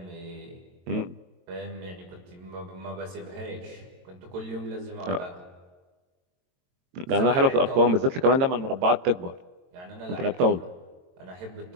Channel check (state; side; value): late; left; 22 ms